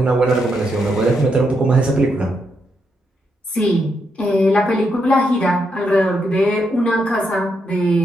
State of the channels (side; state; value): both; normal; correlation 0.80